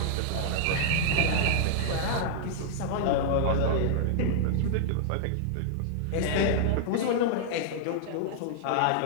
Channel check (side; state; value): both; different; correlation -0.01